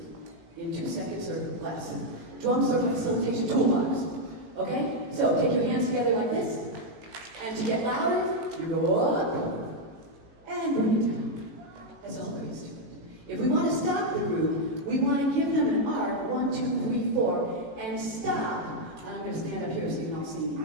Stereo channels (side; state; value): left; late; 18 ms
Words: in 2 seconds or less. Drum circle facilitation toolbox. Okay? So take your hands together like this. And to get louder, you go up and bring it down. That's all there is to it. If we want to stop the group, we want to give them an arc, 1, 2, 3, 4, and stop. I'm going to stand up here so you can all see